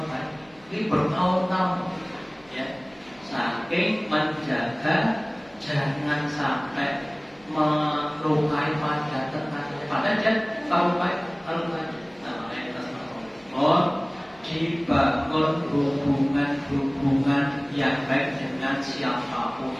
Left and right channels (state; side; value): noise; right; hum, 29 dB below the sound